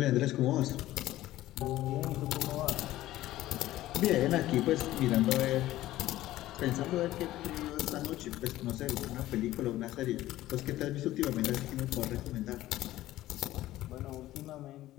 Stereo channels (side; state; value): right; quieter; 15.3 dB